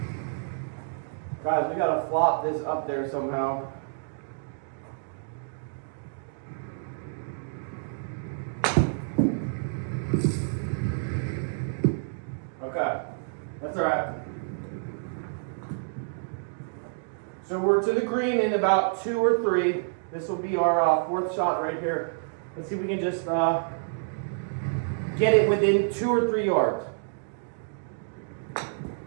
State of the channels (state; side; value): silent; left; digital silence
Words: Guys, we gotta flop this up there somehow. Okay, that's all right. So we're to the green in about 2 or 3. This will be our fourth shot right here. Let's see if we can just get it within 2 or 3 yards.